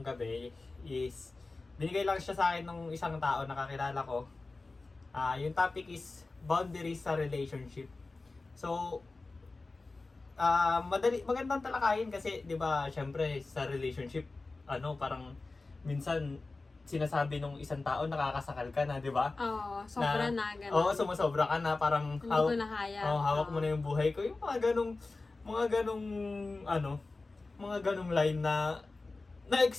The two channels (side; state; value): right; quieter; 3.5 dB